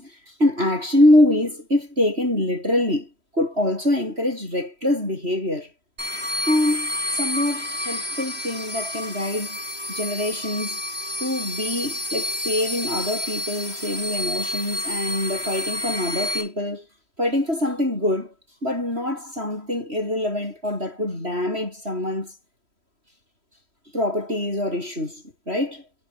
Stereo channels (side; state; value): left; late; 3.1 ms